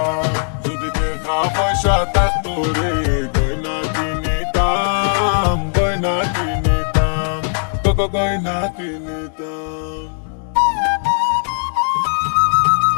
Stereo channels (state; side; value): silent; right; digital silence